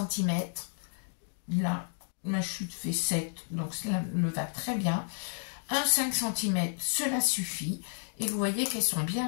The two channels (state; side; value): silent; right; digital silence